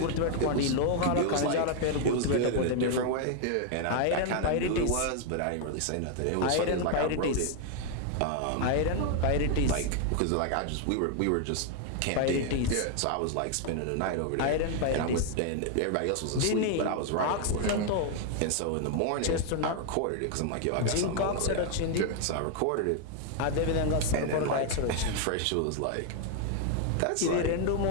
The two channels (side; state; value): both; different; correlation 0.00